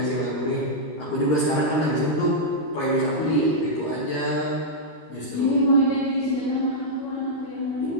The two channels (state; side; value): late; right; 13 ms